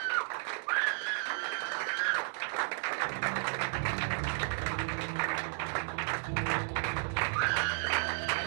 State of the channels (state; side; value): silent; left; digital silence